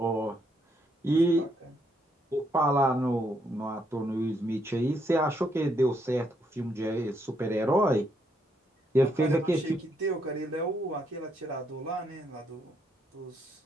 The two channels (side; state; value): both; normal; correlation 0.75